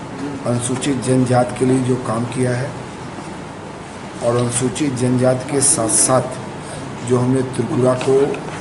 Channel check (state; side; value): identical; both; correlation 1.00